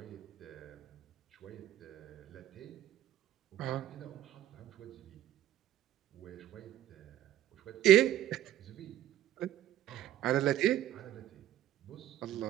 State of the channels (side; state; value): left; quieter; 12.6 dB